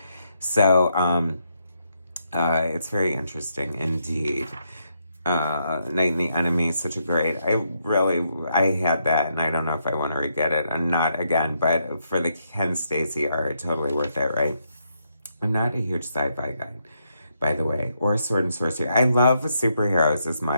So, it's very interesting indeed. Night and the Enemy is such a great. I had that, and I don't know if I want to re-get it, and not again. But for the Ken Stacy art, totally worth it, right? I'm not a huge sci-fi guy, by the way, or sword and sorcery. I love superheroes as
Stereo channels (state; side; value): inverted; both; correlation -0.78